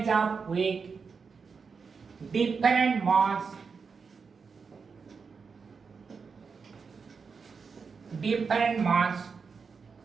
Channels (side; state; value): left; quieter; 5.4 dB